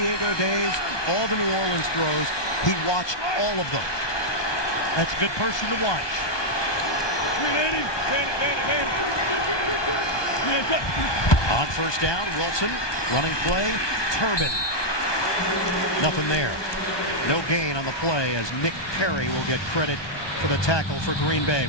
days, all the New Orleans throws, he watched all of them. That's a good person to watch. On first down, Wilson, running play, Turbin. Nothing there. No gain on the play as Nick Perry will get credit for the tackle for Green Bay.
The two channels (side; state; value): right; late; 1.2 ms